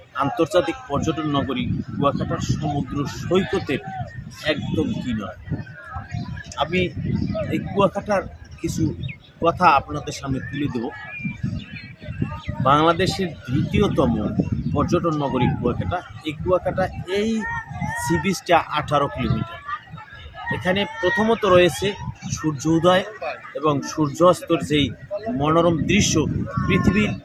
আন্তর্জাতিক পর্যটন নগরী কুয়াকাটার সমুদ্র সৈকতের একদম কিনারে। আমি এই কুয়াকাটার কিছু কথা আপনাদের সামনে তুলে দেব। বাংলাদেশের দ্বিতীয়তম পর্যটন নগরী কুয়াকাটা। এই কুয়াকাটা এই সি বিচটা 18 কিলোমিটার। এখানে প্রথমত রয়েছে সূর্য উদয় এবং সূর্যাস্তর যেই মনোরম দৃশ্য, পৃথিবীর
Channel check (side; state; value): both; identical; correlation 1.00